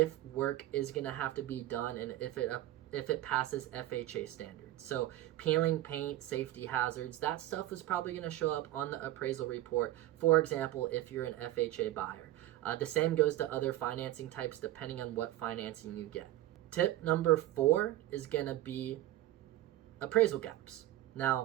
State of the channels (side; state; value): left; quieter; 14.8 dB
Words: work is going to have to be done and if it it passes FHA standards. So peeling paint, safety hazards, that stuff is probably going to show up on the appraisal report, for example, if you're an FHA buyer. The same goes to other financing types depending on what financing you get. Tip number 4 is going to be appraisal gaps.